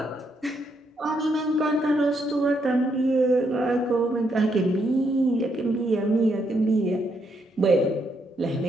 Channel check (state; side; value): normal; both; correlation 0.76